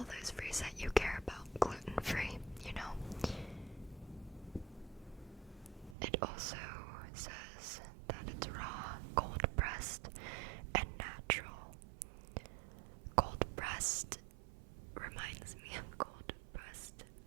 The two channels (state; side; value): drops out; left; at 6.0 s